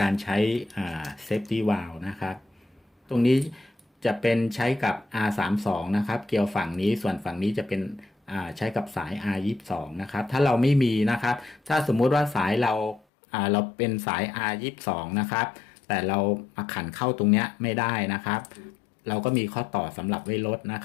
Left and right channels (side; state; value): right; drops out; at 13.0 s